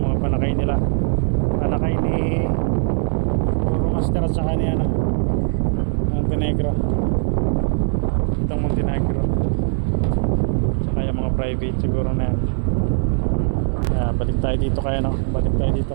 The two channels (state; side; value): silent; left; 63 dB below the other